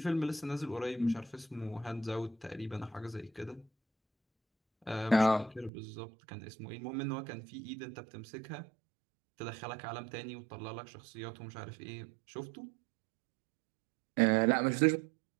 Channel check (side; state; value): left; drops out; at 5.7 s